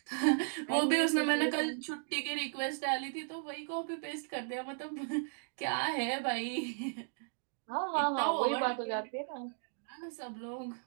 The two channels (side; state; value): left; silent; digital silence